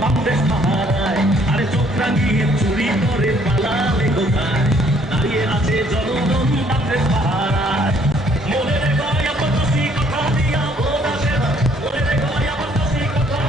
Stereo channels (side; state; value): both; normal; correlation 0.63